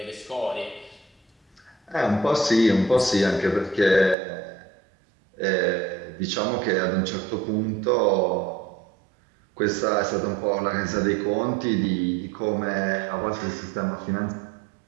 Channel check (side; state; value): left; drops out; at 4.2 s